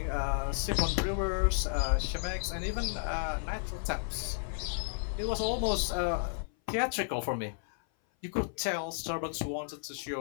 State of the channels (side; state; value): right; silent; 56 dB below the other